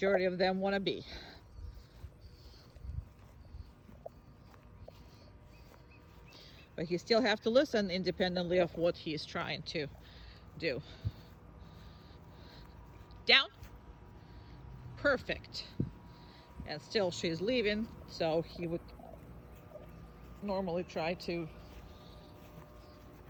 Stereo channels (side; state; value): both; identical; correlation 1.00